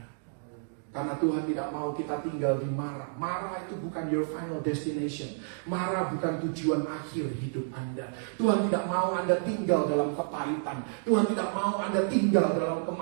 Karena Tuhan tidak mau kita tinggal di Mara. Mara itu bukan your final destination. Mara bukan tujuan akhir hidup Anda. Tuhan tidak mau Anda tinggal dalam kepahitan. Tuhan tidak mau Anda tinggal dalam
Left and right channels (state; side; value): silent; left; digital silence